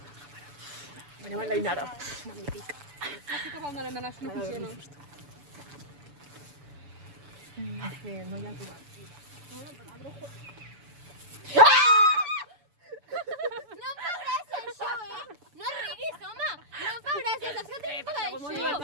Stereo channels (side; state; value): left; late; 7.0 ms